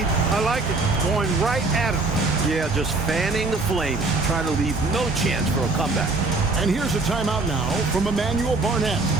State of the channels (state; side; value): quieter; left; 3.4 dB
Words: I like it. Going right at him. Yeah, just fanning the flames, trying to leave no chance for a comeback. And here's a timeout now from Emmanuel Barnett.